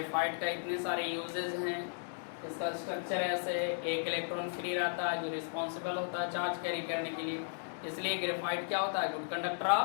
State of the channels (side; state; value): right; silent; digital silence